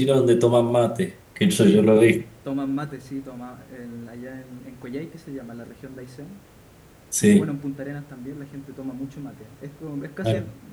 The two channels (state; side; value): identical; both; correlation 1.00